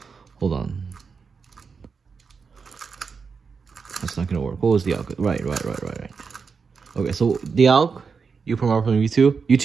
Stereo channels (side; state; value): left; quieter; 5.4 dB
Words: Hold on. That's not gonna work. What was the alg? Right. Okay, so the alg, U prime, R prime, U2,